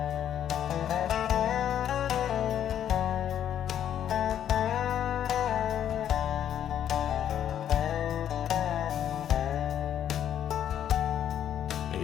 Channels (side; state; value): right; quieter; 10.1 dB